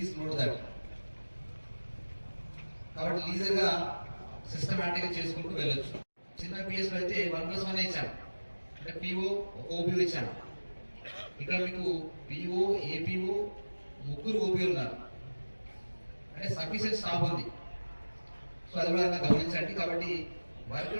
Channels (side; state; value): both; inverted; correlation -1.00